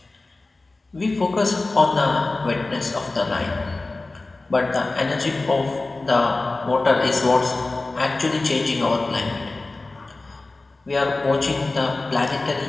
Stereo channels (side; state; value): right; quieter; 3.3 dB